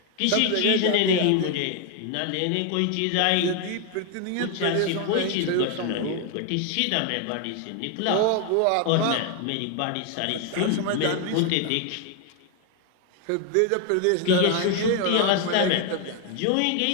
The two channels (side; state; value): both; different; correlation 0.01